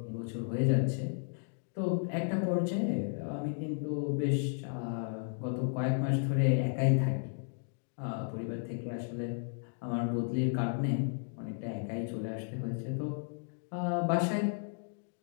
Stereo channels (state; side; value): silent; right; digital silence